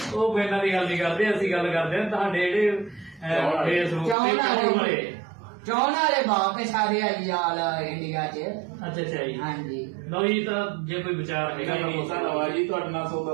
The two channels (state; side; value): drops out; left; at 4.2 s